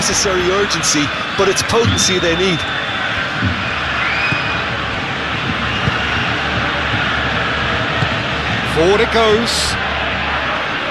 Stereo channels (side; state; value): both; identical; correlation 1.00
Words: urgency, but it's potency they need. Forward it goes.